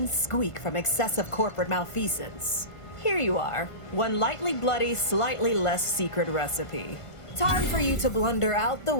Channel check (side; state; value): right; late; 1.5 ms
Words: squeak from excessive corporate malfeasance. Here you are. One lightly bloody, slightly less secret recipe. Time for you to blunder out the